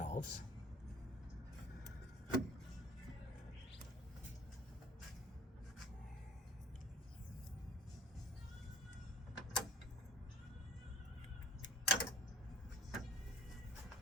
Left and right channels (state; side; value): normal; both; correlation 0.47